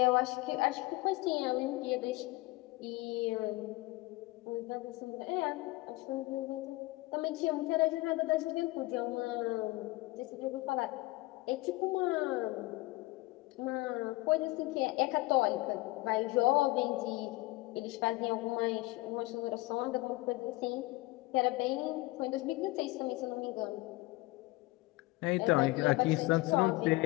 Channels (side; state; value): right; quieter; 21.1 dB